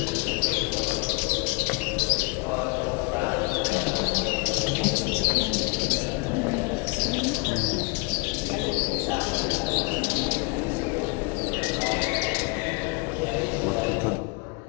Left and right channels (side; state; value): right; quieter; 32.0 dB